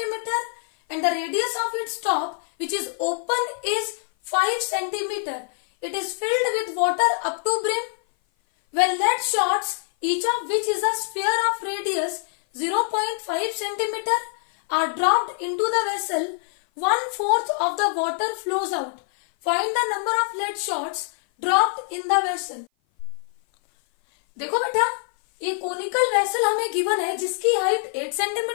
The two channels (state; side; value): silent; right; 57 dB below the other